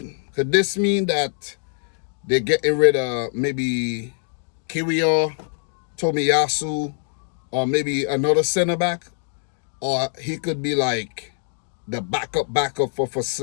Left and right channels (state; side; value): silent; right; digital silence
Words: Could this mean that they're getting rid of maybe Kiwior, Tomiyasu, or maybe another centre-back? Or he could be like the backup for